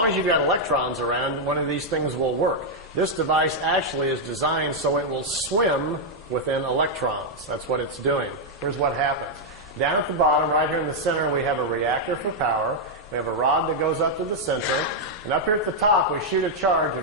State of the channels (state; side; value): normal; both; correlation -0.03